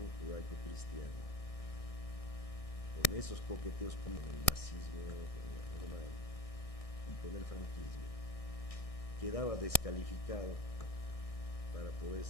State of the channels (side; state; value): right; late; 1.6 ms